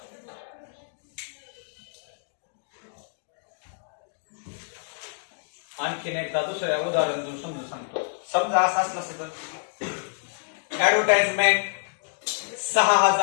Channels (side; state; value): right; silent; digital silence